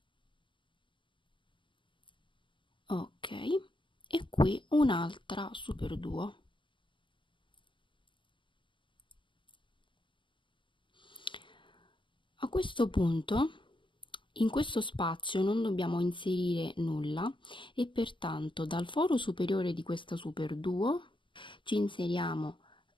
Ok, e qui un'altra superduo. A questo punto in questo spazio non dobbiamo inserire nulla e pertanto dal foro superiore di questa superduo ci inseriamo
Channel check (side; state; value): right; late; 0.24 ms